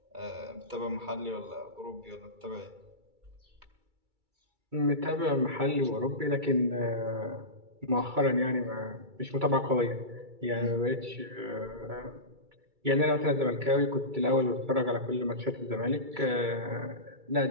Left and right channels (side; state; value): left; late; 2.3 ms